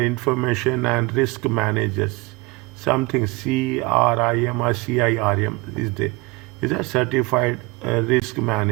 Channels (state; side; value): quieter; left; 23.9 dB